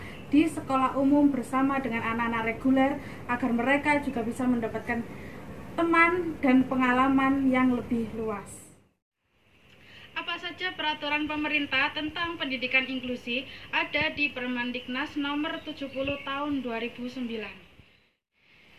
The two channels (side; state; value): both; identical; correlation 1.00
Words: di sekolah umum bersama dengan anak-anak reguler, agar mereka juga bisa mendapatkan teman dan pengalaman yang lebih luas. Apa saja peraturan pemerintah tentang pendidikan inklusi ada di Permendiknas nomor 70 tahun 2009.